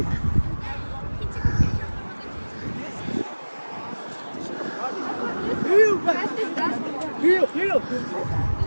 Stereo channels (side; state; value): both; inverted; correlation -1.00